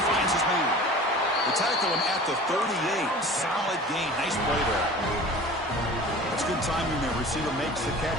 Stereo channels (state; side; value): normal; both; correlation 0.40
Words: finds his man. They tackle him at the 38. Solid gain. Nice play there. That's good timing there. Receiver makes the